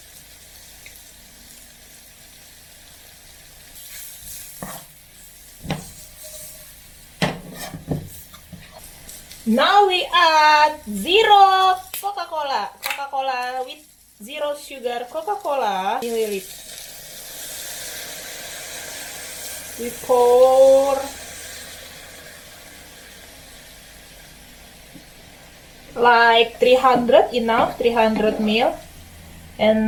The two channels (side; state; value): both; identical; correlation 1.00